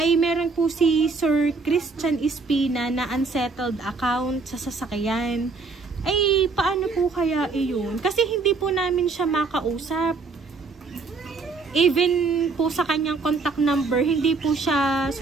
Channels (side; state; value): left; quieter; 4.2 dB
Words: meron po si Sir Christian Espina na unsettled account sa sasakyan. Ay paano po kaya iyon? Kasi hindi po namin siya makausap. Even po sa kanyang contact number, hindi po siya